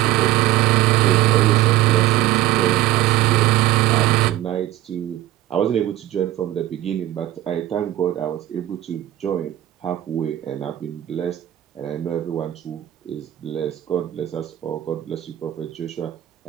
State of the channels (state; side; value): quieter; left; 14.2 dB